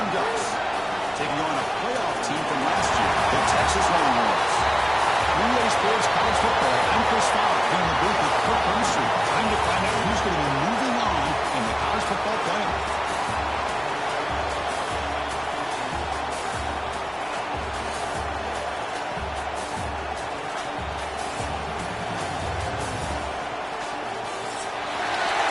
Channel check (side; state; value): both; identical; correlation 1.00